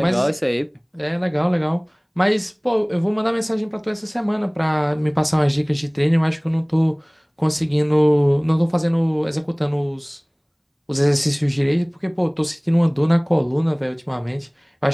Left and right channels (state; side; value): identical; both; correlation 1.00